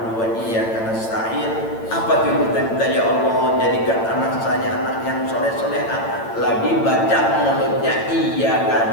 wa iyyaka nasta'in, apa tuh kita minta, ya Allah jadikan anak saya anak yang soleh-soleha. Lagi baca mulutnya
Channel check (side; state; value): right; late; 8.9 ms